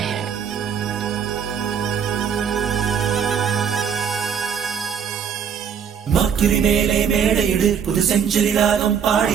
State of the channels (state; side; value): quieter; left; 7.6 dB